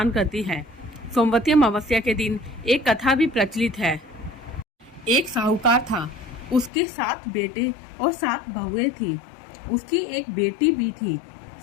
करती हैं। सोमवती अमावस्या के दिन एक कथा भी प्रचलित है। एक साहूकार था, उसके 7 बेटे और 7 बहुएं थी। उसकी एक बेटी भी थी।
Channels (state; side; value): drops out; right; at 6.7 s